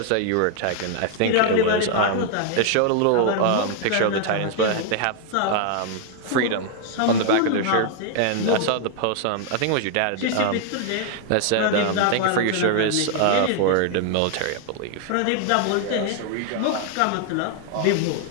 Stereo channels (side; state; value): both; different; correlation 0.00